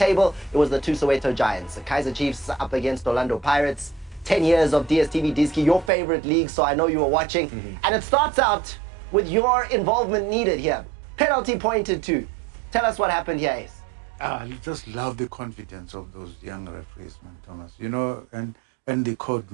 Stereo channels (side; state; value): left; drops out; at 5.9 s